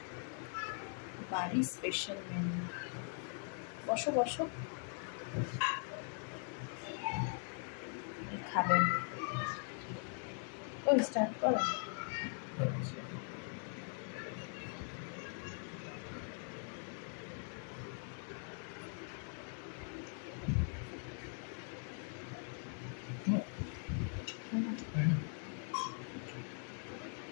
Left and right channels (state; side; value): silent; right; 50 dB below the other